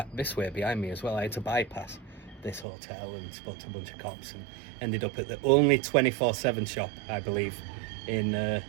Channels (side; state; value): left; drops out; at 2.7 s